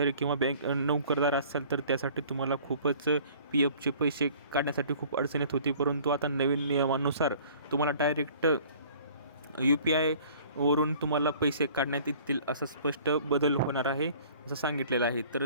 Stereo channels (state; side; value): inverted; both; correlation -0.50